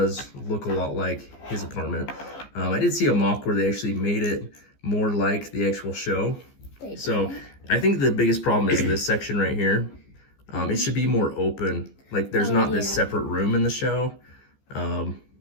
look a lot like his apartment. I did see a mock where they actually made it more like the actual show. So I think the biggest problem is this section right here. It should be more open. Like there's not this separate room in the show.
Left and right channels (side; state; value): right; late; 15 ms